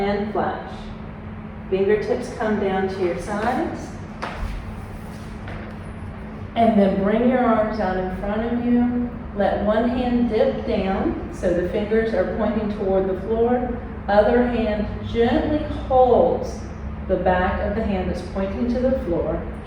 flash. Fingertips come down to your sides. And then bring your arms out in front of you. Let one hand dip down so the fingers are pointing toward the floor. Other hand gently holds the back of the hand that's pointing to the floor.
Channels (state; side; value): identical; both; correlation 1.00